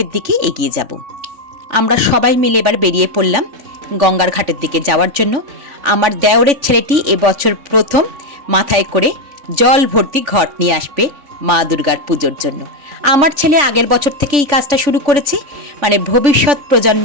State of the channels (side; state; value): left; late; 3.5 ms